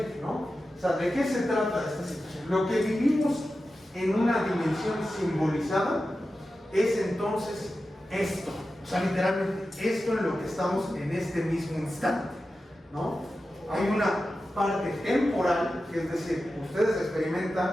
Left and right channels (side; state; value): both; normal; correlation 0.93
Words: ¿no? O sea, ¿de qué se trata esta situación? Lo que vivimos en una dimensión simbolizada es entonces esto. O sea, literalmente esto en lo que estamos en este mismo instante, ¿no? Hay una parte temporal, que es decir, ustedes